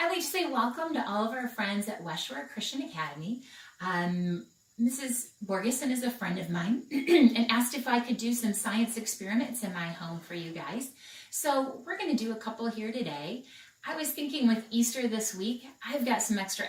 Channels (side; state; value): both; identical; correlation 1.00